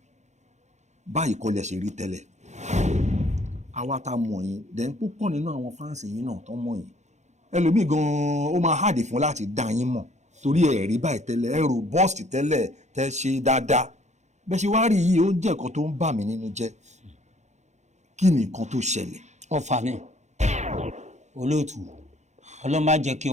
Báyìí kọ́ lẹ ṣe rí tẹ́lẹ̀. Àwa tá mọ̀ yín, then púpọ̀ nínú àwọn fáǹsì yín náà tó mọ̀ yín. Ẹlòmíì gan-an ó máa hàdì fún láti dá yín mọ̀ torí ẹ rí báyìí tẹ́lẹ̀, ẹ robust tẹ́lẹ̀, tẹ́ ṣe dáadáa. Bẹ́ẹ̀ ṣe wá rí yìí ó jẹ́ nǹkan tó ń bà mí nínú jẹ́. Kí ni nǹkan tó ṣẹlẹ̀? Ọfà ni. Olóòtú. Ọlọ́run má jẹ́ kí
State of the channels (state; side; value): late; left; 0.33 ms